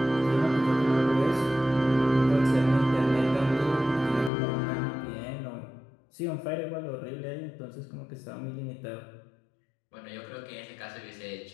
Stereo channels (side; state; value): right; drops out; at 4.3 s